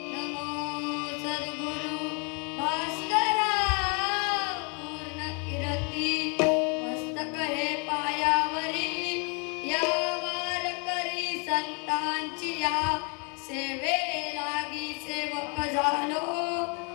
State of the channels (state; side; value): quieter; right; 35.2 dB